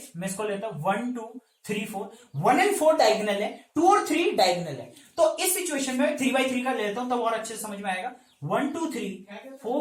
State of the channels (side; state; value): both; identical; correlation 1.00